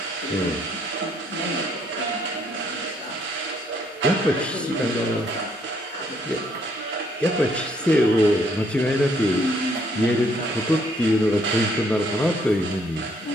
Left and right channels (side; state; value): both; normal; correlation 0.68